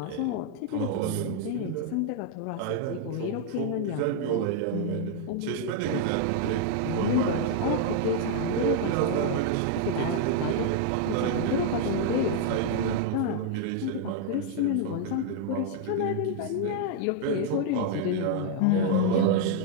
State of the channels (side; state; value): both; different; correlation -0.01